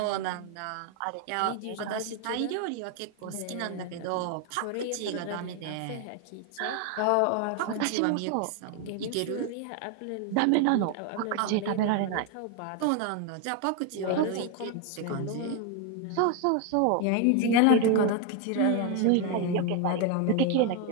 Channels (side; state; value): both; different; correlation 0.01